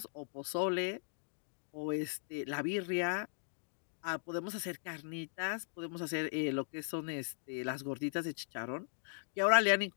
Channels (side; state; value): right; silent; digital silence